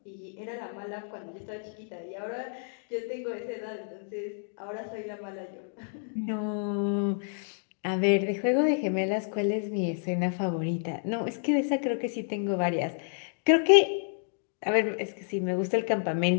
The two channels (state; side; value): silent; right; digital silence